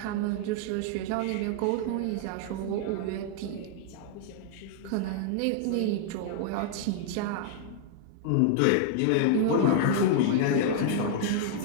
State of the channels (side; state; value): both; different; correlation -0.01